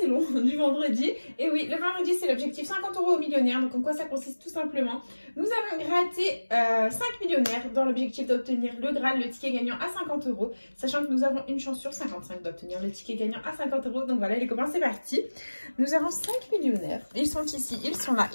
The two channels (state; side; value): inverted; both; correlation -1.00